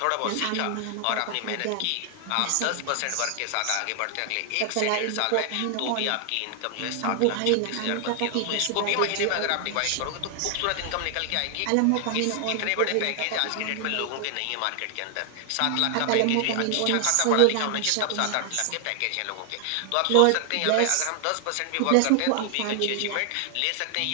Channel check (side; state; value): both; different; correlation 0.00